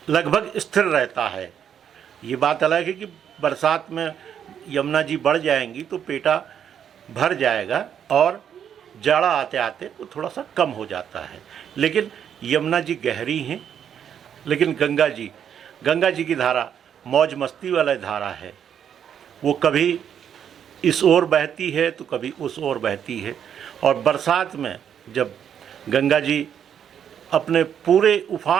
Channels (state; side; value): quieter; left; 8.7 dB